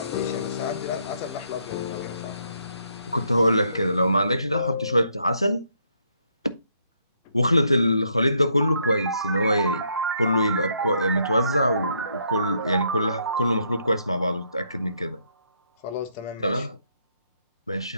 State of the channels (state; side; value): inverted; both; correlation -0.73